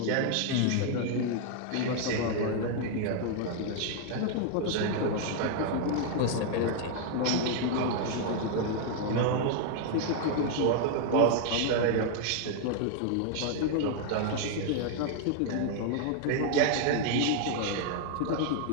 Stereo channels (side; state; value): both; different; correlation 0.00